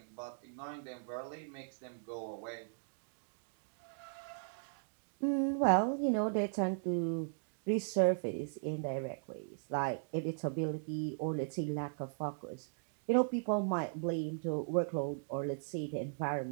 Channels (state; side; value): silent; left; digital silence